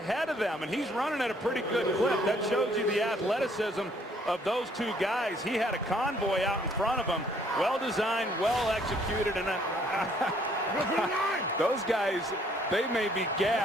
of them, and he's running at a pretty good clip. That shows you the athleticism of those two guys. He had a convoy out in front of him, well designed, well executed, and those guys, they may be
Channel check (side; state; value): both; normal; correlation 0.64